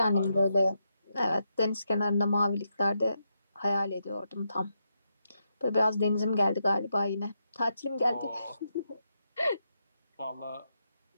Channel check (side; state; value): both; inverted; correlation -0.83